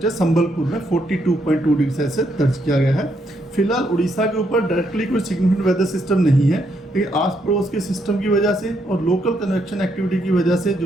संबलपुर में 42.2 डिग्री सेल्सियस दर्ज किया गया है। फिलहाल उड़ीसा के ऊपर डायरेक्टली कोई सिग्निफिकेंट वेदर सिस्टम नहीं है, लेकिन आस पड़ोस के सिस्टम की वजह से और लोकल कन्वेक्शन एक्टिविटी की वजह से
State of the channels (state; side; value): normal; both; correlation 0.76